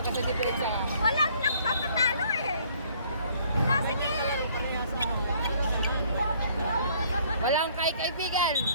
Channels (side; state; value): both; inverted; correlation -0.60